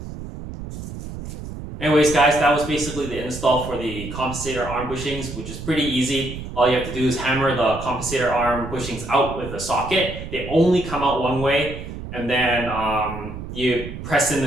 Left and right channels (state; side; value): noise; right; rumble, 9 dB below the sound